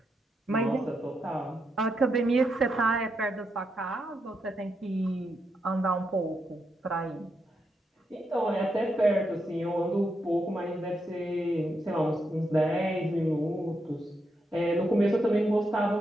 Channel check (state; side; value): normal; both; correlation 0.83